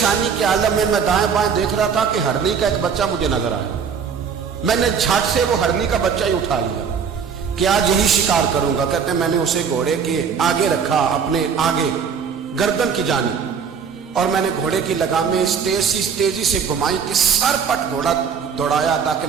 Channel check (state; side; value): quieter; left; 6.6 dB